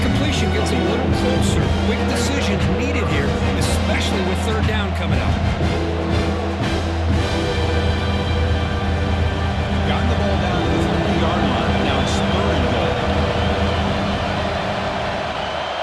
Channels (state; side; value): identical; both; correlation 1.00